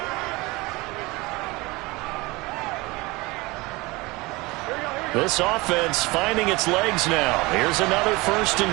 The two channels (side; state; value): left; quieter; 23.0 dB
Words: This offense finding its legs now. Here's another 1st